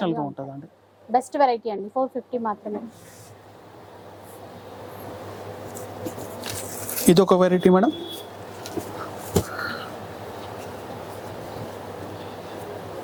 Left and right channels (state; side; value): identical; both; correlation 1.00